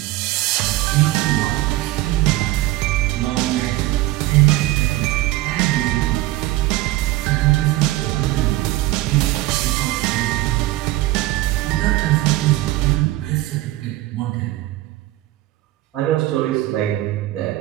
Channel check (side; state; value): left; quieter; 17.1 dB